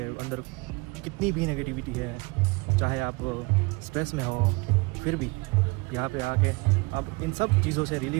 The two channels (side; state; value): left; quieter; 26.8 dB